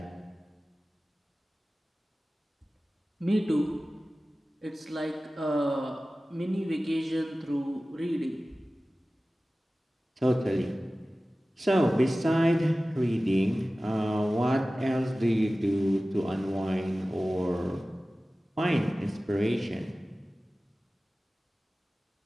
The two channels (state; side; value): normal; both; correlation 0.96